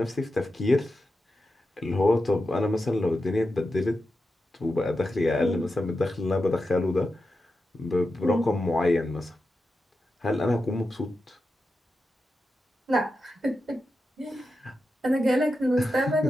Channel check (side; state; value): both; normal; correlation 0.89